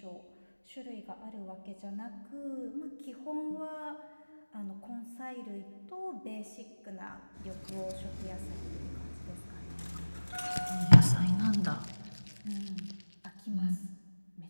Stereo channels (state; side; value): inverted; both; correlation -1.00